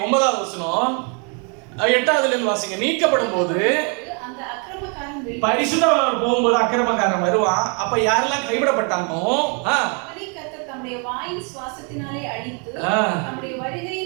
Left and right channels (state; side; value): quieter; left; 36.7 dB